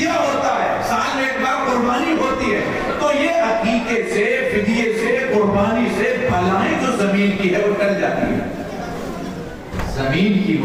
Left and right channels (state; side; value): identical; both; correlation 1.00